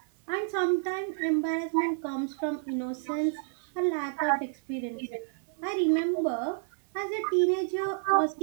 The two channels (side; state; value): left; silent; digital silence